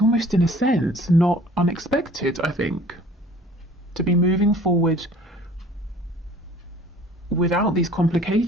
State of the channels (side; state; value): both; normal; correlation 0.50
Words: almost in a sense not unexpected, I think, to be moving forward without these